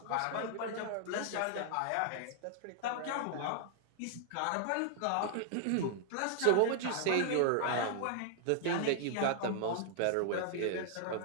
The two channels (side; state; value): both; different; correlation 0.00